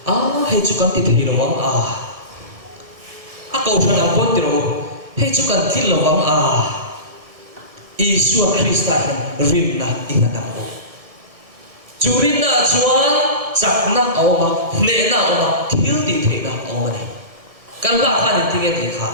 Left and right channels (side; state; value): left; late; 1.6 ms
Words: hei chu kan ti thei lo wang a kau thana kon ti ro hei chu kan thil lo wang Isua Krista rin na ingatang ko churin na chuan chakna awma ne na awma thil ti the na awma ni kan la kha ni tinge ti kha